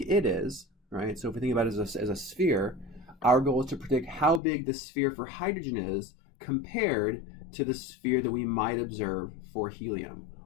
it is, right? So if we think about it as a sphere, our goal is to predict how big the sphere for hydrogen is compared to the sphere that we might observe for helium.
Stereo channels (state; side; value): drops out; right; at 4.4 s